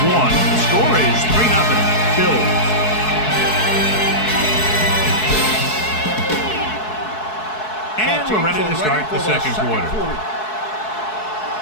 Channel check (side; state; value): right; late; 4.7 ms